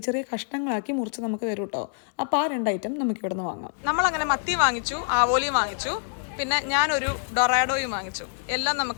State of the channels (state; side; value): silent; right; 61 dB below the other